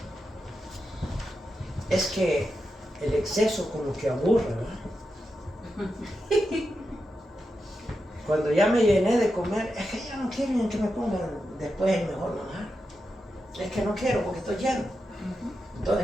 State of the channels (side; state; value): both; normal; correlation 0.88